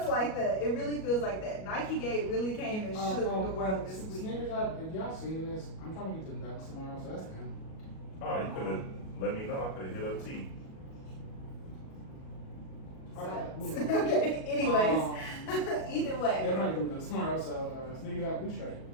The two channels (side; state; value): right; late; 37 ms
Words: like that. It really feels like that. Nike Gate really came and shook the world this week. Sneakers up, if y'all seeing this, I'm trying to get to the Ducks tomorrow, so that's them. Oh, you could have let me know. I could have hit up T. Okay, Okay, anyways, either way. Yeah, I'm trying to get to the Ducks tomorrow, so Sneakers up, we straight.